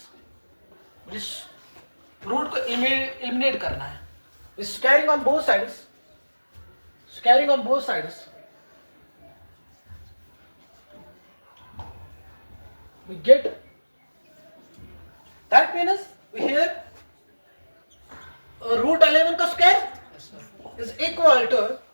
Root को एलिमिनेट करना है। Squaring on both sides, squaring on both sides we get that means we here root 11 का square is equal to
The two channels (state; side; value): inverted; both; correlation -1.00